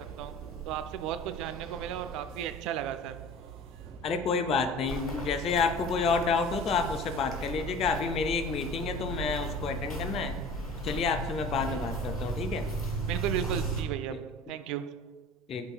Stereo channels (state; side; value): normal; both; correlation 0.40